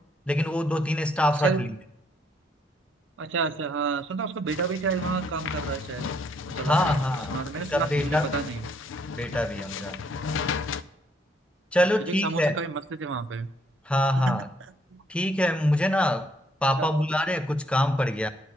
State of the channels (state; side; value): normal; both; correlation 0.69